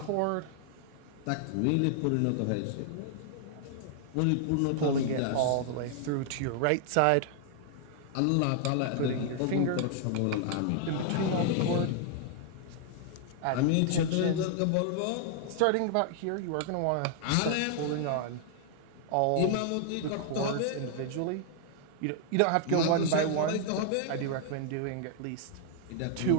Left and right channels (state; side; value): different; both; correlation 0.00